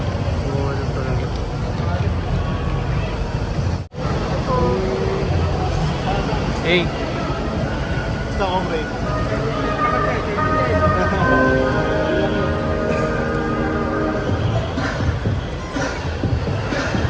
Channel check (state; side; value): identical; both; correlation 1.00